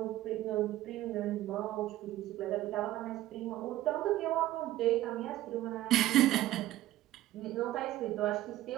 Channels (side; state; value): left; quieter; 14.9 dB